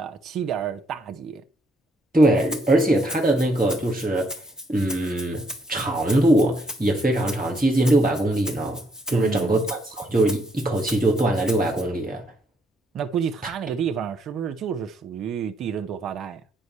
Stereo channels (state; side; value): normal; both; correlation 0.72